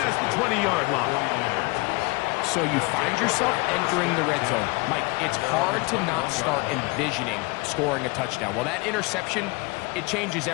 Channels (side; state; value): right; quieter; 25.9 dB